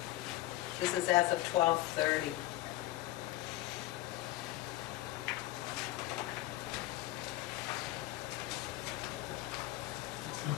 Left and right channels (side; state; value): right; quieter; 16.0 dB